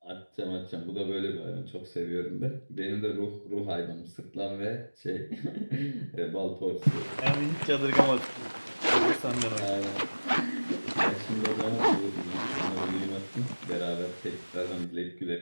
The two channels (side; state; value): both; inverted; correlation -1.00